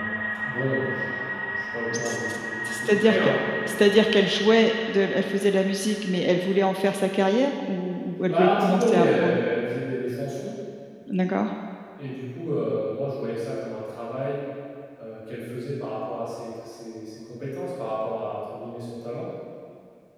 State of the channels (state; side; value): identical; both; correlation 1.00